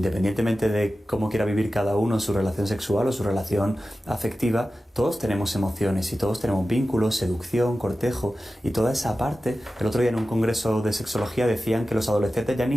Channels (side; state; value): both; normal; correlation 0.94